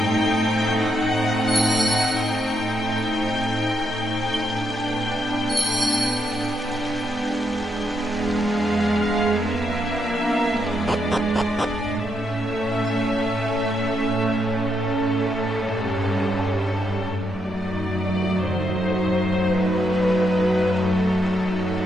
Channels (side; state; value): both; normal; correlation 0.80